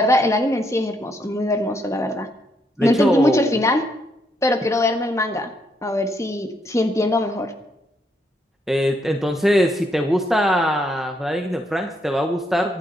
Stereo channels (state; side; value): normal; both; correlation 0.75